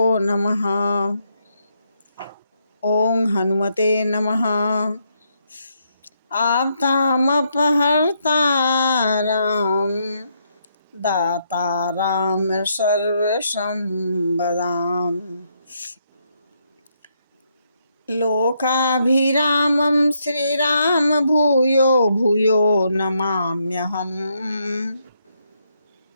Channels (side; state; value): both; inverted; correlation -0.77